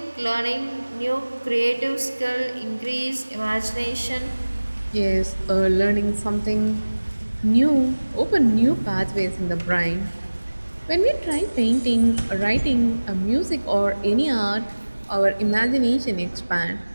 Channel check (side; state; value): both; inverted; correlation -1.00